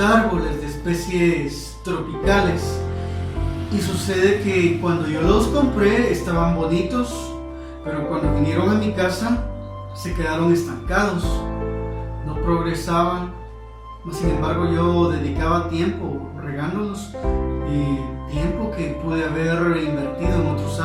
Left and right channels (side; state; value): both; identical; correlation 1.00